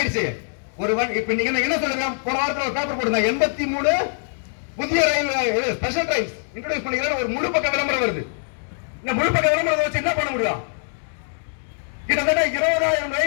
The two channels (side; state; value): right; silent; digital silence